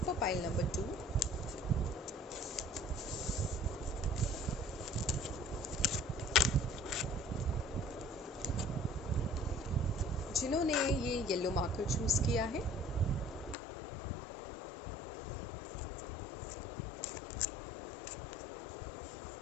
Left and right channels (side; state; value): right; drops out; at 13.6 s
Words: for pile number 2। जिन्होंने ये येलो मार्कर चूज़ किया है,